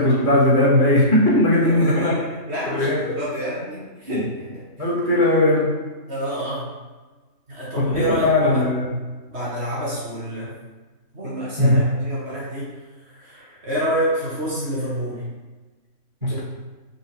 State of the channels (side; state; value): left; late; 3.1 ms